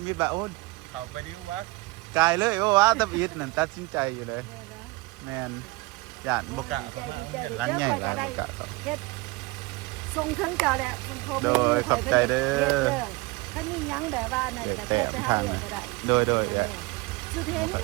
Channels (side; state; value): left; quieter; 23.4 dB